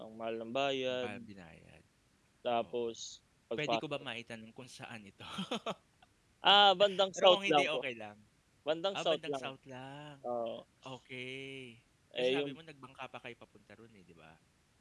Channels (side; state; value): both; identical; correlation 1.00